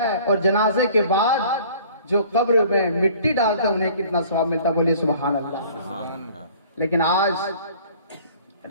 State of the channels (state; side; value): inverted; both; correlation -0.51